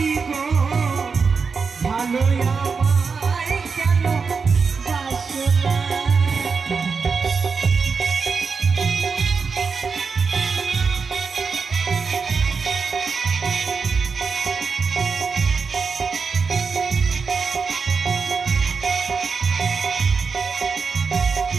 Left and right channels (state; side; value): quieter; left; 5.2 dB